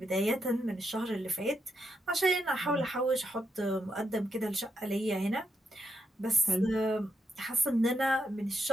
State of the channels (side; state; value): both; normal; correlation 0.81